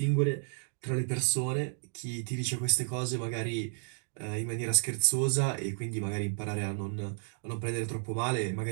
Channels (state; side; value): silent; left; digital silence